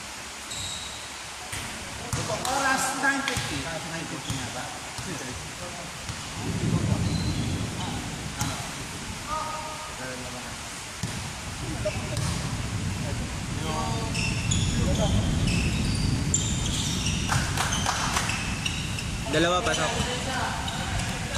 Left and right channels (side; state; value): both; identical; correlation 1.00